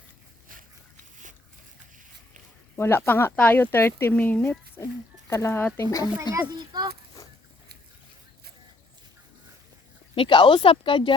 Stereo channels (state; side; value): quieter; right; 3.0 dB